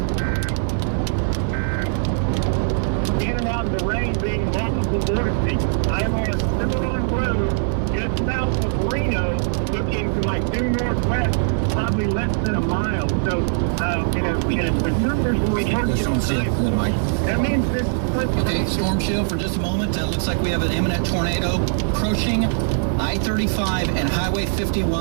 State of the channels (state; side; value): silent; left; digital silence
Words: In and out of the rain being multiple vortices. I am on a Cimarron road just south of Reno, looking to my due northwest, probably less than a mile. So, the numbers will be The storm shield, Mike. That means this. Okay, storm shield for just a moment. Looks like we have an imminent tornado approaching I-35 and Highway